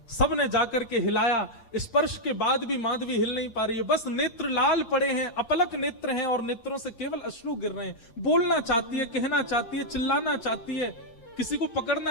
सब ने जाकर के हिलाया, स्पर्श के बाद भी माधवी हिल नहीं पा रही है। बस नेत्र लाल पड़े हैं, अपलक नेत्र हैं और नेत्रों से केवल अश्रु गिर रहे हैं। बोलना चाहती है, कहना चाहती है, चिल्लाना चाहती है, किसी को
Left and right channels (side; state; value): right; late; 8.2 ms